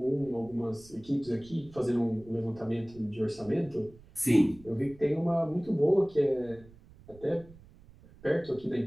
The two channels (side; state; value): right; noise; rumble, 23 dB below the sound